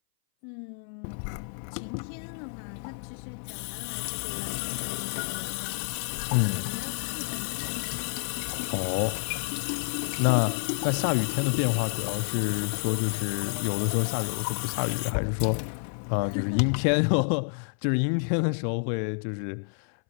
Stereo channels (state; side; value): silent; right; 59 dB below the other